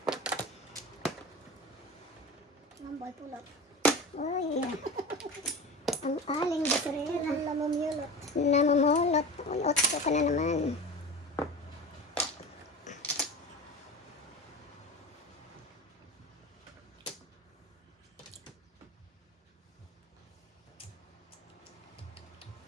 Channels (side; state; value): both; normal; correlation 0.31